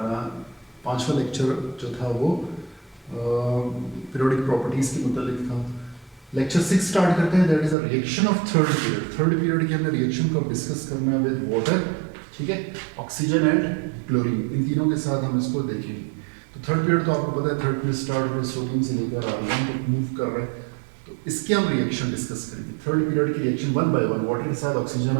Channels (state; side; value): drops out; left; at 7.8 s